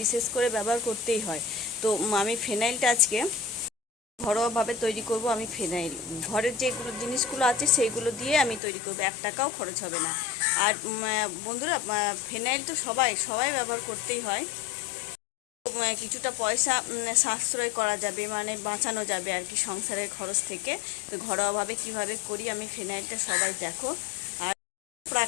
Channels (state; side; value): drops out; right; at 8.6 s